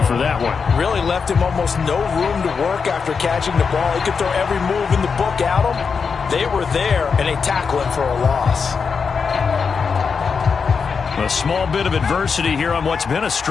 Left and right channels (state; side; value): quieter; right; 5.6 dB